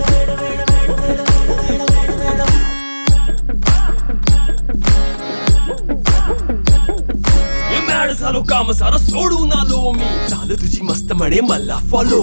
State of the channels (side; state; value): both; inverted; correlation -1.00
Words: झालो काम सारं सोडून आलो मी चाल तुझी मस्त म्हणे मला फॉलो